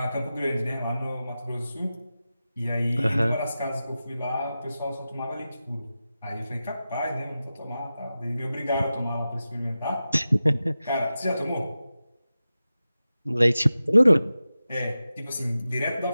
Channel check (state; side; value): inverted; both; correlation -0.94